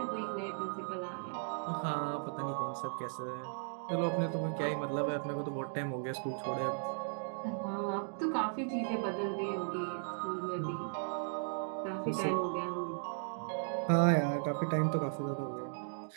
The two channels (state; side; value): silent; left; digital silence